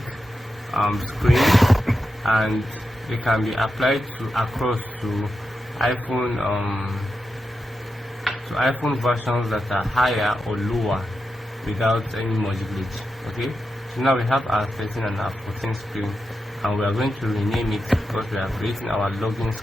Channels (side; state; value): both; normal; correlation 0.89